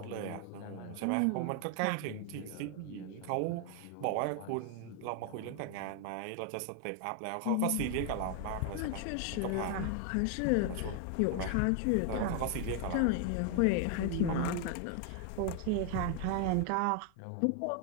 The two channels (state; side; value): different; both; correlation 0.00